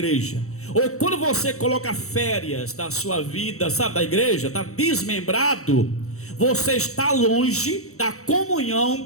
ou quando você coloca férias da sua vida, sabe, da igreja, está desmembrado, você está longe da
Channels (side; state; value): right; late; 0.64 ms